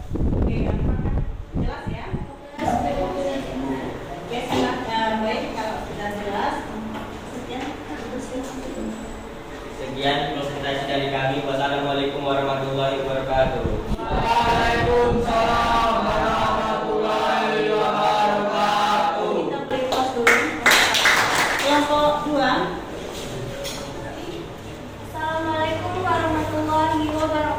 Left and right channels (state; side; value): identical; both; correlation 1.00